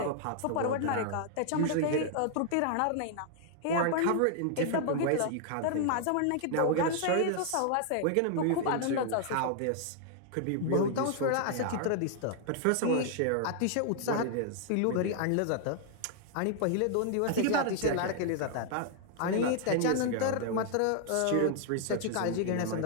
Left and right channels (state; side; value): different; both; correlation 0.00